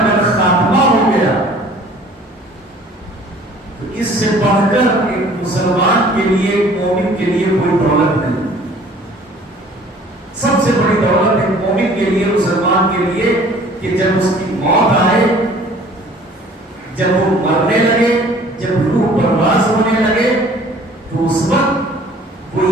خاتمہ ہو گیا تو اس سے بڑھ کر ایک مسلمان کے لیے، ایک مومن کے لیے کوئی دولت نہیں۔ سب سے بڑی دولت ایک مومن کے لیے، مسلمان کے لیے، کہ جب اس کی موت آئے، جب وہ مرنے لگے، جب روح پرواز ہونے لگے، تو اس وقت وہ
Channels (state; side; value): normal; both; correlation 0.52